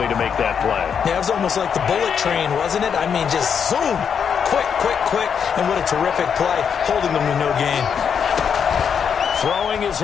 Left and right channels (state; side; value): quieter; right; 7.2 dB